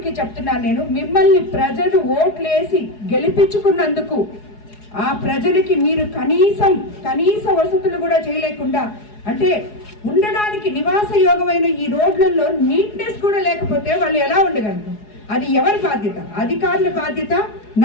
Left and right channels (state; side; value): late; right; 4.8 ms